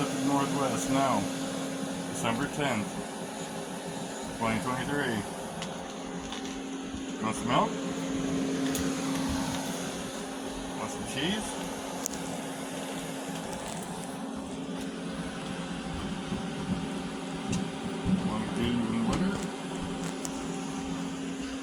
Northwest, no. December 10th, 2023. Want some milk? Want some cheese? Want to do even wetter?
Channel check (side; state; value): both; identical; correlation 1.00